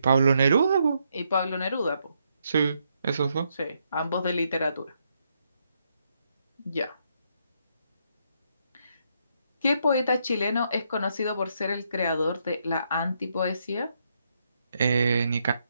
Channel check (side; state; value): both; inverted; correlation -0.77